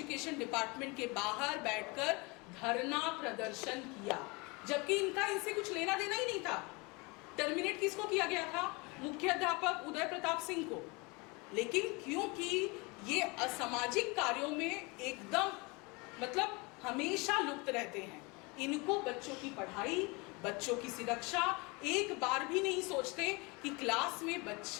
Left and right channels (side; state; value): right; quieter; 27.3 dB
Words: डिपार्टमेंट के बाहर बैठकर धरना प्रदर्शन किया, जबकि इनसे कुछ लेना देना ही नहीं था। टर्मिनेट किसको किया गया था? मुख्याध्यापक उदय प्रताप सिंह को। लेकिन क्योंकि ये असामाजिक कार्यों में एकदम मतलब हमेशा लुप्त रहते हैं, इनको बच्चों की पढ़ाई, बच्चों की सुरक्षा एक बार भी नहीं सोचते कि क्लास में